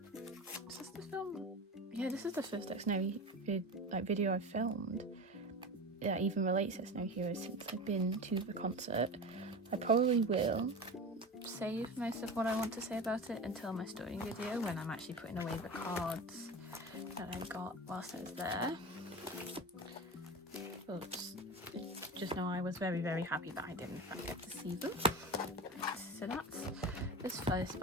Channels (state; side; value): normal; both; correlation 0.28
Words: Is this the film? Yeah, this is the first Xdinary video I've filmed that even relates to Xdinary Heroes since I've been to the concert. I probably will save most of what I want to say about it until my story video, when I'm actually putting away the cards that I got whilst I was there. But just know I was very, very happy that I did in fact get to see them. So that's this first